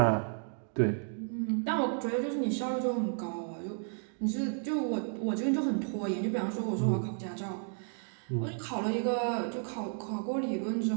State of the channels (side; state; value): left; silent; 56 dB below the other